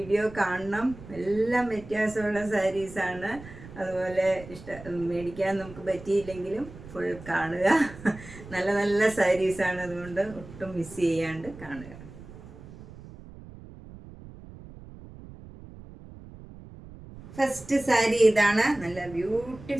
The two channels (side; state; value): right; noise; rumble, 17 dB below the sound